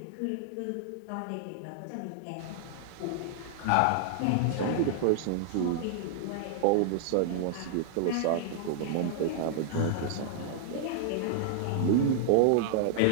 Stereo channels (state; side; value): different; both; correlation -0.01